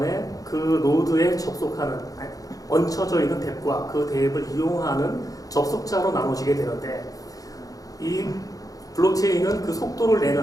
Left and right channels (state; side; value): late; right; 0.17 ms